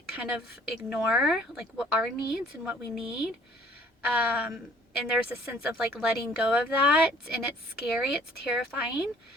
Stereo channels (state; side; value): normal; both; correlation 0.56